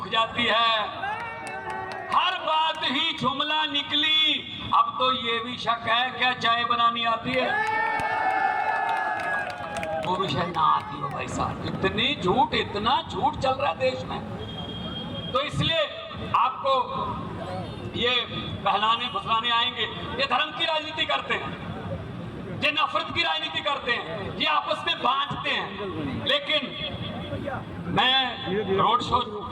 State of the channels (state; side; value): identical; both; correlation 1.00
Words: जाती है। हर बात ही जुमला निकली। अब तो ये भी शक है क्या चाय बनानी आती है? वो भी शायद ना आती हो भाई साहब। इतना झूठ चल रहा है देश में। तो इसलिए आपको ये बहलाने फुसलाने आएंगे। ये धर्म की राजनीति करते हैं, ये नफरत की राजनीति करते हैं, ये आपस में बांटते हैं। लेकिन मैं रोड शो